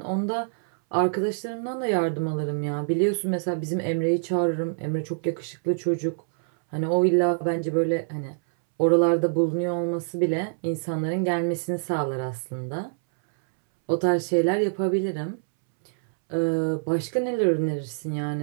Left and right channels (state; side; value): silent; left; 61 dB below the other